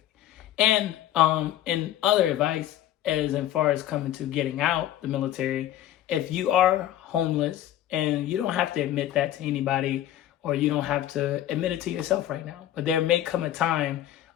And other advice, as far as coming to getting out the military, if you are homeless, and you don't have to admit that to anybody, or you don't have to admit it to yourself right now, but there may come a time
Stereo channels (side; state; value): right; quieter; 12.5 dB